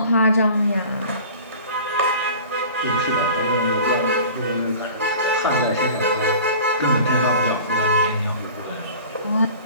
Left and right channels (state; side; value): inverted; both; correlation -0.41